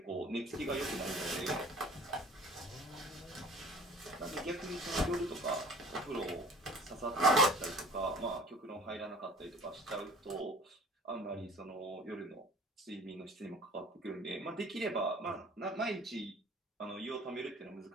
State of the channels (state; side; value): normal; both; correlation 0.46